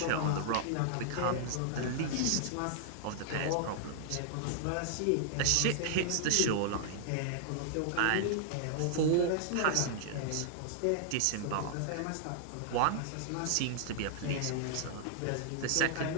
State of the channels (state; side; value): different; both; correlation -0.01